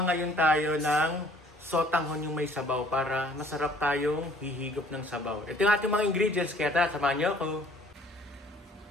ngayon tayo ng sotanghon yung may sabaw para masarap tayong hihigop ng sabaw. Ito yung ating mga ingredients, kaya samahan niyo ako.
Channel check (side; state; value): both; normal; correlation 0.57